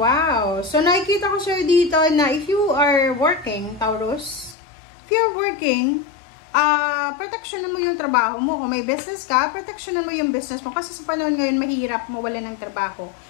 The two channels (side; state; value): right; drops out; at 4.5 s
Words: wow. So, nakikita ko sa'yo dito na if you are working, Taurus, if you're working, protection mo yung trabaho mo. Kung may business ka, protection mo yung business mo. Kasi sa panahon ngayon, mahirap mawala ng trabaho.